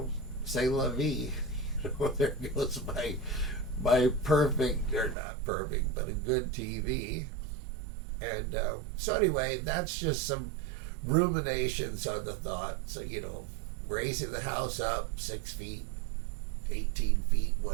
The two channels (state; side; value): drops out; left; at 5.2 s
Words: C'est la vie. There goes my perfect, or not perfect, but a good TV. And so anyway, that's just some ruminations on the thought. So, raising the house up 6 feet, 18 feet,